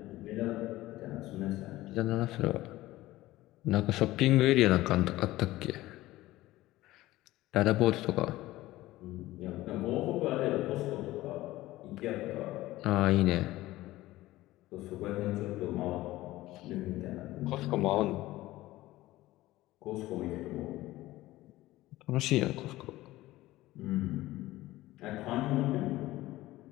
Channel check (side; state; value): right; quieter; 17.1 dB